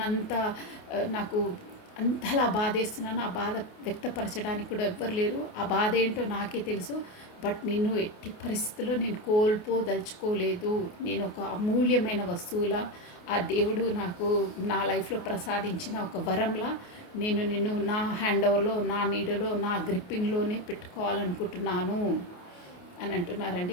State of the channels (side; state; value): right; late; 28 ms